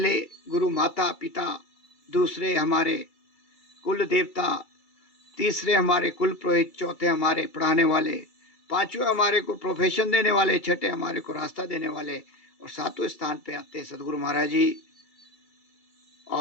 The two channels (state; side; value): late; right; 2.3 ms